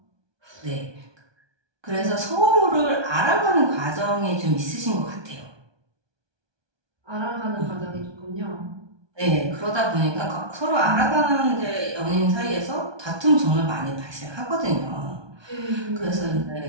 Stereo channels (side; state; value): left; late; 1.2 ms